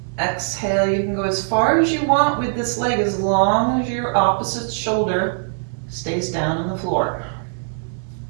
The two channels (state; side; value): silent; left; 65 dB below the other